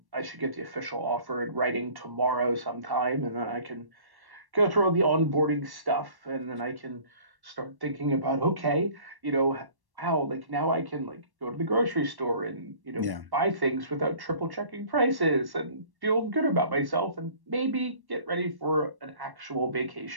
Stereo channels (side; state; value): left; late; 1.1 ms